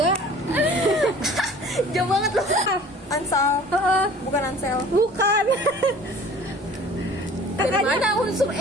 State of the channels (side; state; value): both; normal; correlation 0.47